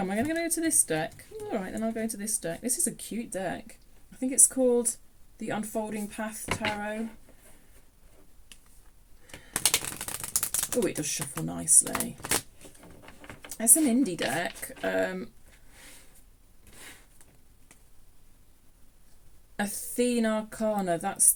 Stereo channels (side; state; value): both; identical; correlation 1.00